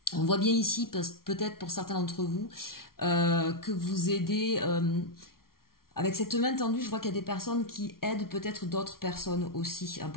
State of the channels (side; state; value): right; late; 0.93 ms